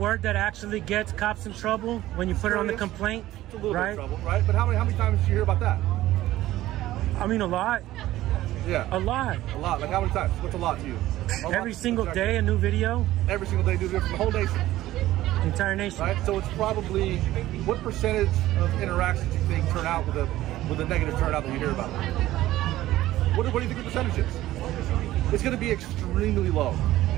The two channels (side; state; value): left; quieter; 15.3 dB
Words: actually gets cops in trouble when you put it on the complaint? It's a little bit of trouble, right? But how many times do you hear about that? I mean, a lot. Yeah. A lot. Like how many times? What's a lot to you? Every single day, a new video. Every single day, new video from the whole nation. Entire nation. Right. So it's probably, what percentage of interactions do you think turn out with a negative turnout that you hear about? What do you think the percentage is? It's going to be extremely low.